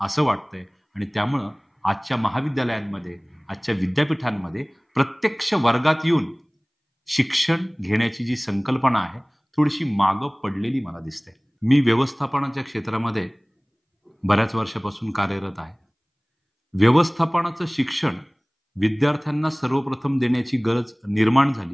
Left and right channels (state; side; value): identical; both; correlation 1.00